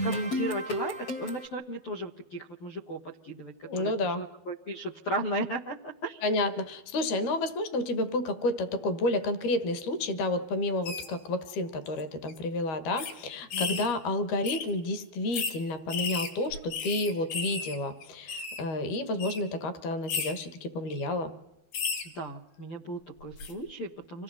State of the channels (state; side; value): late; right; 12 ms